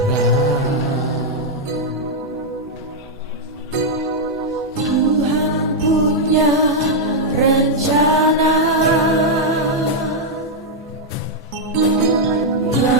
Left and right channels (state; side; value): normal; both; correlation -0.02